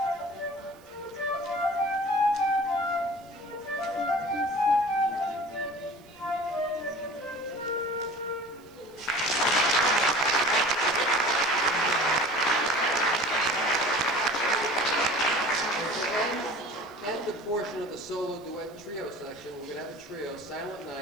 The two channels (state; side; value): noise; right; hiss, 29 dB below the sound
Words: Portion of the solo duet trio section, we're going to have a trio, Silent